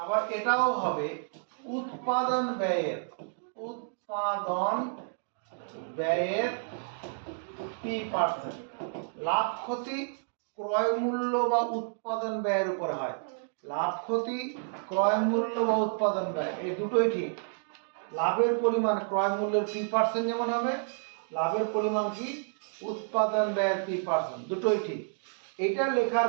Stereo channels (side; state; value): left; silent; digital silence